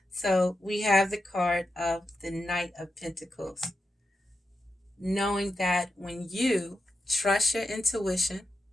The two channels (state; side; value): normal; both; correlation 0.88